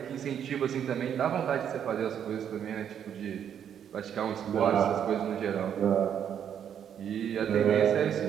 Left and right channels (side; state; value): left; quieter; 8.9 dB